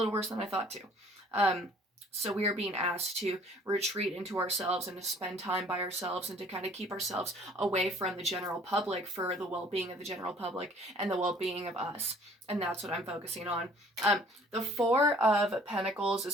worse than I thought too. Um, so we are being asked to retreat into ourselves and to spend time by ourselves and to kind of keep ourselves away from the general public for the well-being of the general public and the well-being of us. And that's what I'm focusing on. The Four of Pentacles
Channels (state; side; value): normal; both; correlation 0.55